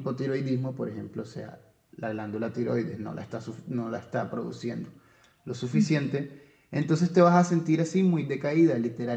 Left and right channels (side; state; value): both; identical; correlation 1.00